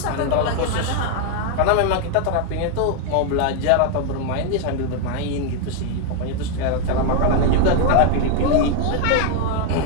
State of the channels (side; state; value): both; different; correlation 0.00